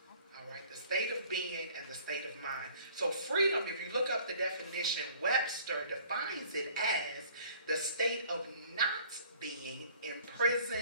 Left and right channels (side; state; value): both; inverted; correlation -0.53